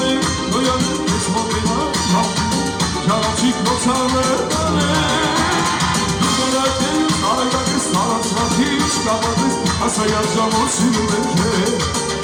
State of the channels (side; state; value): both; identical; correlation 1.00